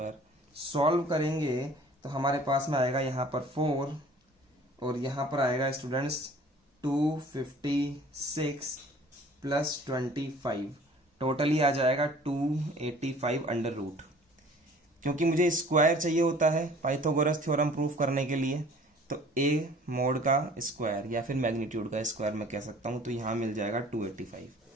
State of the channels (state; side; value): normal; both; correlation 0.50